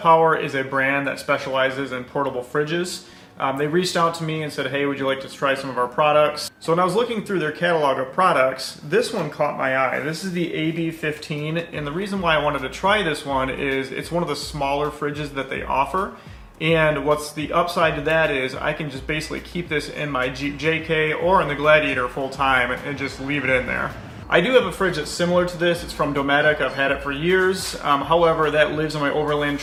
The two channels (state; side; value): identical; both; correlation 1.00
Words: is a brand that specializes in portable fridges. They reached out to me and said, hey, would you like to try some of our products? So when I was looking through their catalog of products, this one caught my eye. This is the AB15, and the reason why I wanted to try this one is it's one of the smaller fridges that they offer. And what's the upside to that is I can just basically keep this in my Jeep JK or in the Gladiator full time and just leave it in there. I do have a fridge that's similar to this. It's from Dometic. I've had it for years. However, that lives in my overland